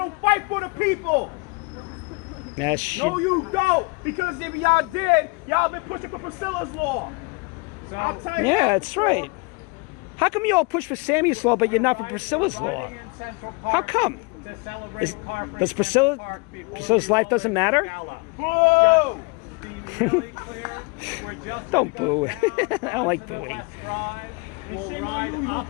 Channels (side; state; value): right; quieter; 29.6 dB